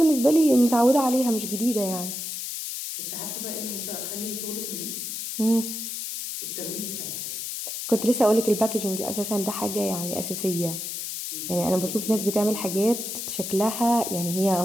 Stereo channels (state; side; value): noise; left; hiss, 5 dB below the sound